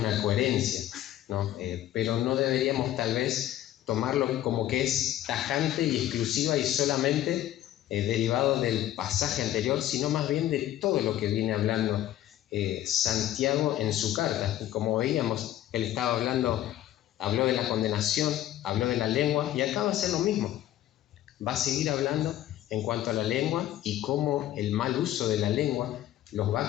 coherencia, ¿no? Pero no deberíamos tal vez tomarlo como que es tajante y exclusiva y solamente derivado del pasaje anterior, sino más bien de todo lo que viene hablando Santiago en su carta. Y como veíamos, él estaba habló de la condenación, habló de la lengua, y acá va a ser lo mismo. Va a seguir hablando en cuanto a la lengua y cómo el mal uso de la lengua los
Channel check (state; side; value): quieter; right; 13.0 dB